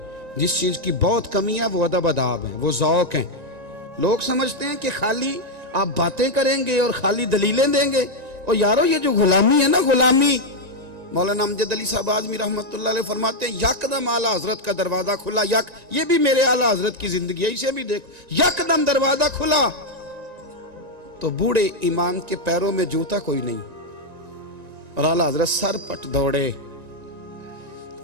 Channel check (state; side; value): late; left; 1.9 ms